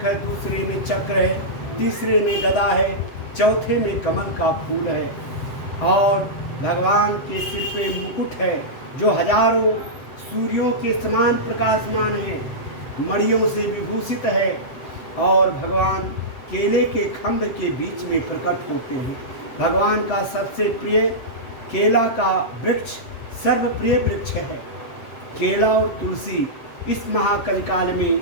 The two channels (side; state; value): right; late; 7.9 ms